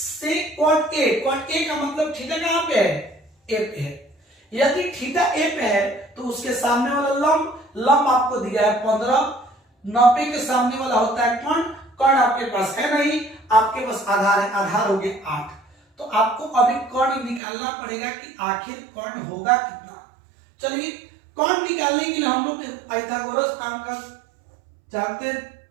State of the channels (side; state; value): left; drops out; at 17.4 s